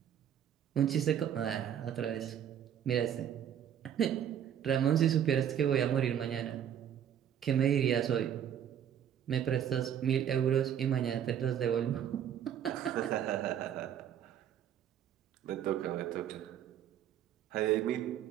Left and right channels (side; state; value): left; quieter; 9.6 dB